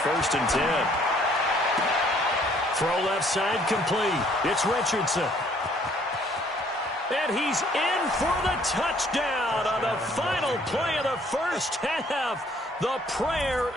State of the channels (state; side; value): normal; both; correlation 0.61